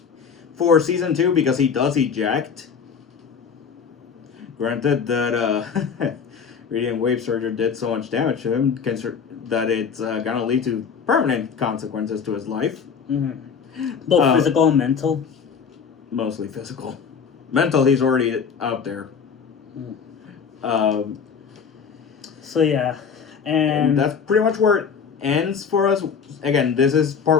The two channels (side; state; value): right; quieter; 6.4 dB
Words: for season 2 because he does eject. Granted that radiant wave surger did so much damage to him that it's gonna lead to permanent consequences to his life. Mm-hmm. Both physical and mental. Mostly physical. Mental, he's already out there. So yeah, and that's pretty much where it ends for us. Again, this is